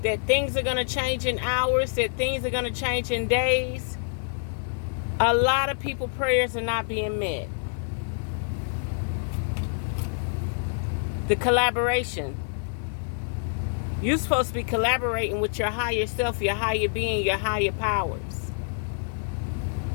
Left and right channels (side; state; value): right; silent; 60 dB below the other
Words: that things are going to change in hours, that things are going to change in days. A lot of people's prayers are not being met. The collaboration. You're supposed to be collaborating with your higher self, your higher being, your higher powers.